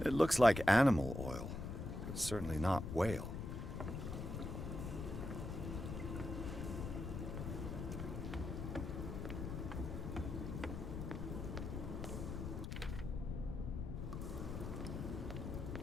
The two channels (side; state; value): left; noise; rumble, 5 dB below the sound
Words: looks like animal oil, but certainly not whale.